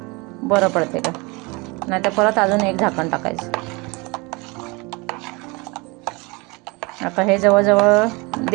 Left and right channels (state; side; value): quieter; left; 26.8 dB